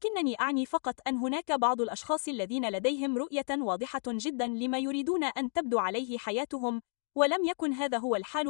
أعني فقط أن هناك بعض الأشخاص الذين لديهم رؤية واضحة جداً لما يريدون أن تبدو عليه حياتهم، ولم يكن هذا هو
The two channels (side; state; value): right; silent; 57 dB below the other